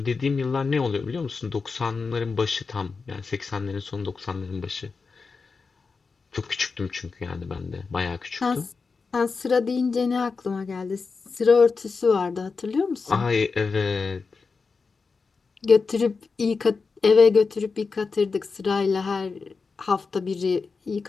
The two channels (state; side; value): quieter; right; 4.7 dB